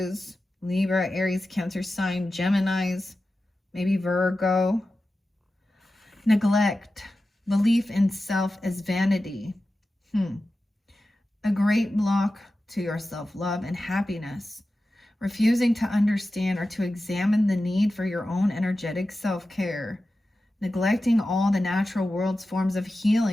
Libra, Aries, Cancer sign, Geminis. Maybe Virgo. Neglect. Belief in self as vanity. A great block to your self-love and happiness. Refusing to understand or to examine the need for your own energetic self-care. Neglecting all the natural world's forms of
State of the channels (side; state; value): both; normal; correlation 0.93